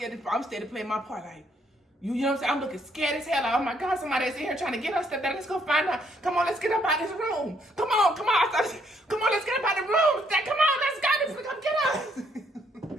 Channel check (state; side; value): normal; both; correlation 0.70